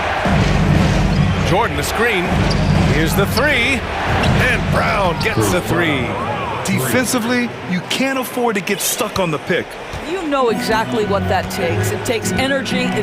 Jordan the screen. Here's the 3. And Brown gets the 3. Defensively, you can't afford to get stuck on the pick. You know exactly what that takes. It takes energy,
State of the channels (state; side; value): identical; both; correlation 1.00